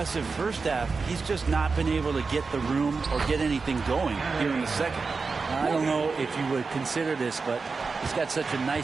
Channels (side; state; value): left; quieter; 4.5 dB